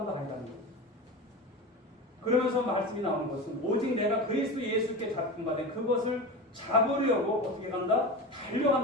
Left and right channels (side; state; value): both; normal; correlation 0.27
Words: 아니라는 거예요. 그러면서 말씀이 나오는 것은 오직 내가 그리스도 예수께 잡힌 바 된 그것을 잡으려고 어떻게 간다?